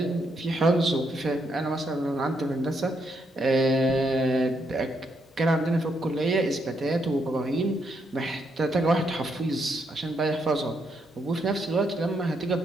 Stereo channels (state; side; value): normal; both; correlation 0.78